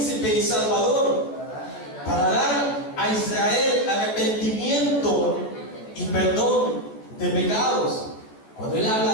y salvador, para dar a Israel arrepentimiento y perdón de pecados. Cuando Él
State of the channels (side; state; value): right; late; 14 ms